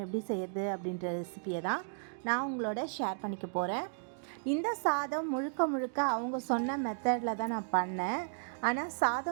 எப்படி செய்யறது அப்படின்ற ரெசிபியை தான் நான் உங்களோட ஷேர் பண்ணிக்க போகிறேன். இந்த சாதம் முழுக்க அவங்க சொன்ன மெத்தடில் தான் நான் பண்ணேன். ஆனால்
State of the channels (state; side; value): silent; left; digital silence